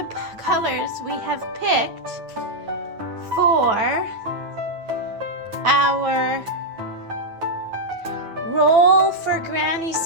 colors we have picked for our Roll for Granny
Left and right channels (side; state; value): left; late; 9.1 ms